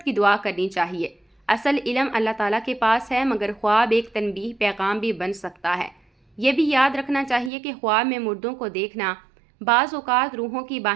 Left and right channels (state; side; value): drops out; left; at 7.5 s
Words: کی دعا کرنی چاہیے۔ اصل علم اللہ تعالیٰ کے پاس ہے مگر خواب ایک تنبیہ پیغام بھی بن سکتا ہے۔ یہ بھی یاد رکھنا چاہیے کہ خواب میں مردوں کو دیکھنا بعض اوقات روحوں کی